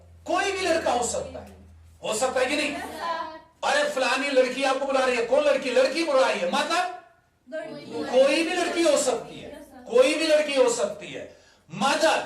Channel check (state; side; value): identical; both; correlation 1.00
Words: कोई भी लड़का हो सकता है, हो सकता है कि नहीं। अरे फलानी लड़की आपको बुला रही है, कौन लड़की, लड़की बुला रही है, मतलब कोई भी लड़की हो सकती है, कोई भी लड़की हो सकती है, मदर